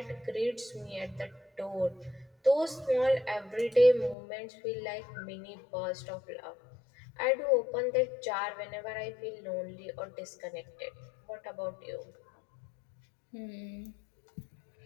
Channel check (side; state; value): right; drops out; at 4.2 s